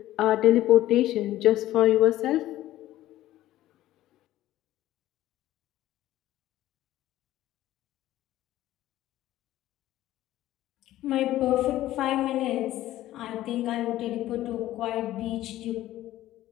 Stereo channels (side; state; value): right; quieter; 14.5 dB